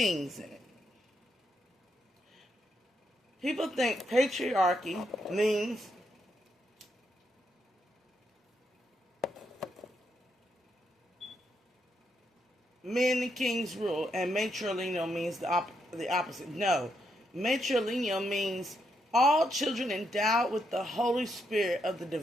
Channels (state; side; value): normal; both; correlation 0.79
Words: in it. People think patriarchy means men and kings rule, and matrilineal means the opposite. No. Matrilineal means all children endowed with the Holy Spirit of the